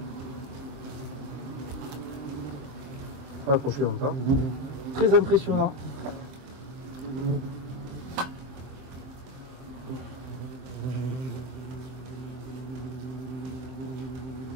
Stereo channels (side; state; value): left; late; 23 ms